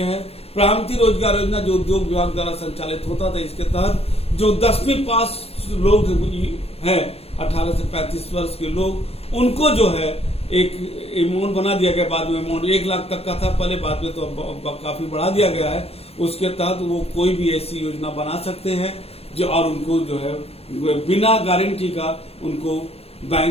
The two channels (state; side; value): late; right; 0.29 ms